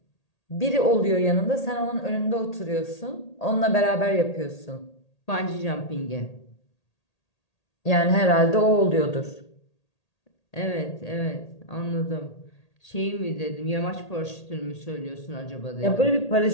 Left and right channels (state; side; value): late; right; 1.8 ms